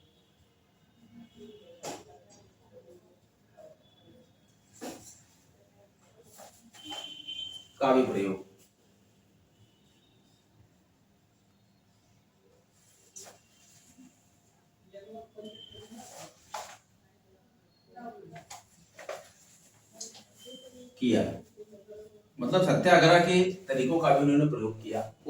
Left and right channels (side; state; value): both; identical; correlation 1.00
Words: का भी प्रयोग किया। मतलब सत्याग्रह के तरीकों का भी उन्होंने प्रयोग किया।